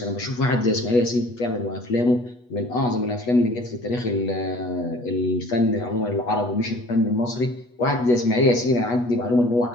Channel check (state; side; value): late; right; 8.2 ms